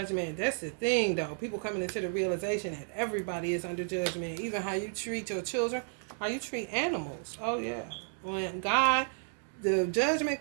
That's the thing, though. People coming into the realization that everybody is under judgment. Even how you treat your children, how you treat animals. Oh, yeah. When God, the judgment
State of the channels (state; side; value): silent; left; 56 dB below the other